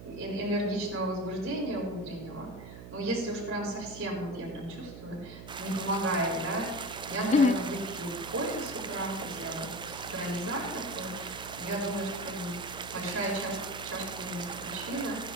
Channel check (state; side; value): noise; right; hum, 12 dB below the sound